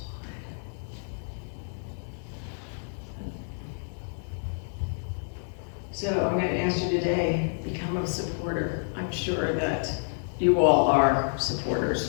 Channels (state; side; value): silent; right; digital silence